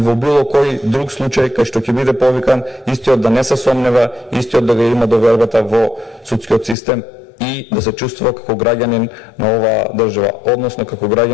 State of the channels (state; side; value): drops out; right; at 6.8 s